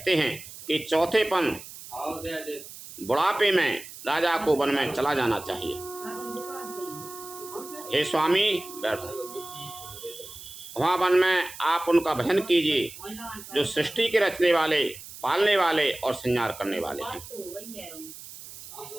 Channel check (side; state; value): right; noise; hiss, 15 dB below the sound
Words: हैं कि चौथेपन बुढ़ापे में राजा को वन में चला जाना चाहिए। हे स्वामी, वहाँ वन में आप उनका भजन कीजिए जो सृष्टि के रचने वाले, पालने वाले और संहार करने वाले हैं।